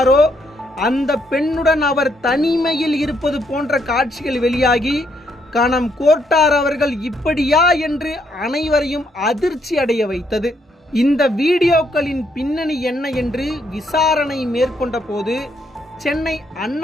அந்த பெண்ணுடன் அவர் தனிமையில் இருப்பது போன்ற காட்சிகள் வெளியாகி கணம் கோர்ட்டார் அவர்கள் இப்படியா என்று அனைவரையும் அதிர்ச்சி அடைய வைத்தது. இந்த வீடியோக்களின் பின்னணி என்ன என்று விசாரணை மேற்கொண்ட போது சென்னை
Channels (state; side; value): normal; both; correlation 0.74